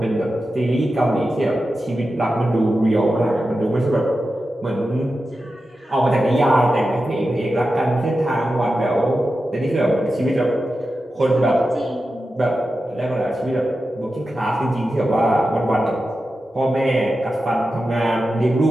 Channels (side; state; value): both; normal; correlation 0.91